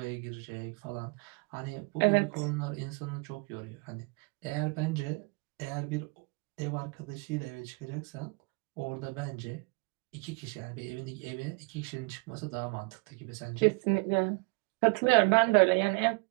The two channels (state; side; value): quieter; left; 32.0 dB